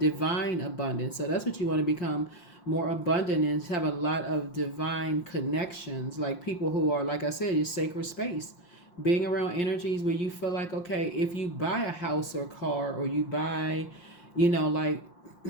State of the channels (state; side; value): late; right; 5.7 ms